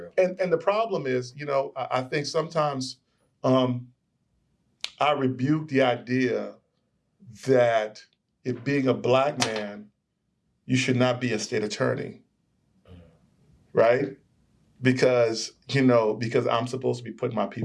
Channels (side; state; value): both; identical; correlation 1.00